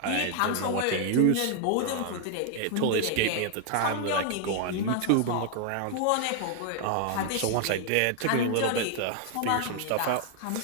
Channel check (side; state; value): both; different; correlation 0.00